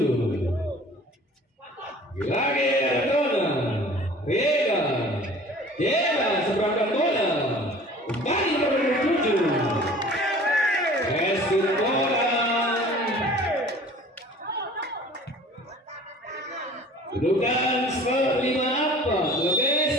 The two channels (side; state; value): both; normal; correlation 0.47